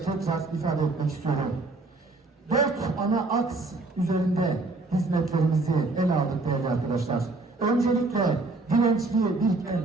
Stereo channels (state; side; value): quieter; left; 3.3 dB